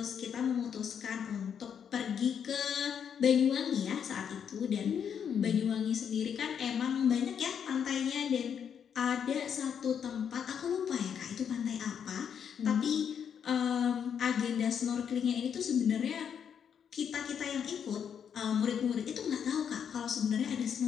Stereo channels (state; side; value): quieter; right; 7.8 dB